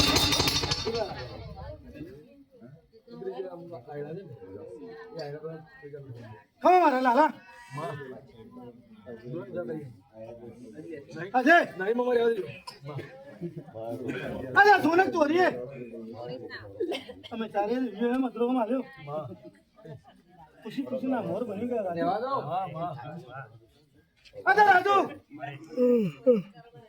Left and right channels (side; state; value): both; identical; correlation 1.00